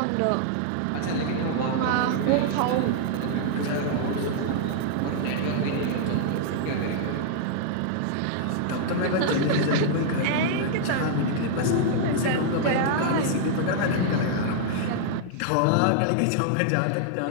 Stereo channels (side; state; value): both; different; correlation -0.01